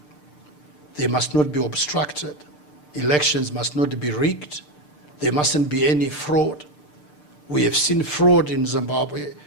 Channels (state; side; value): late; right; 6.7 ms